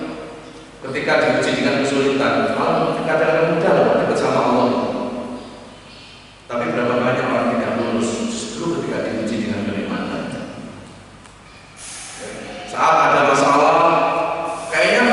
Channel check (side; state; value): both; identical; correlation 1.00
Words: ketika diuji dengan kesulitan, malah kadang-kadang mudah loh dekat sama Allah. Tapi berapa banyak orang tidak lulus justru ketika diuji dengan kenikmatan. Saat ada masalah,